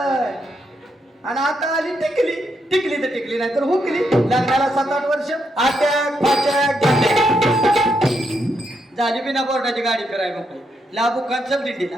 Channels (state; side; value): normal; both; correlation 0.79